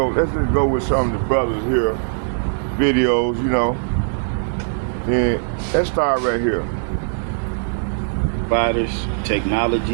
with some of the brothers here videos, you know. And let's start right here. Providers,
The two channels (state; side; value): silent; left; 64 dB below the other